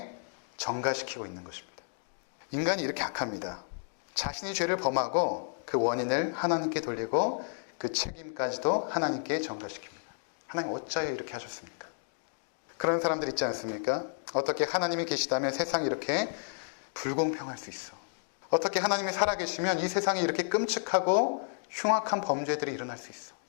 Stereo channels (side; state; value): right; silent; digital silence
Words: 전가시키고 있는 것입니다. 인간이 이렇게 악합니다. 자신이 죄를 범하고 그 원인을 하나님께 돌리고 그 책임까지도 하나님께 전가시킵니다. 하나님 어찌하여 이렇게 하셨습니까? 그런 사람들 있지 않습니까? 어떻게 하나님이 계시다면 세상이 이렇게 불공평할 수 있어. 어떻게 하나님이 살아계시면 이 세상에 이렇게 끔찍하고 흉악한 범죄들이 일어날 수 있어.